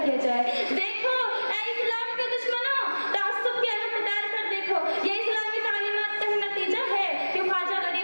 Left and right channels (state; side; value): inverted; both; correlation -1.00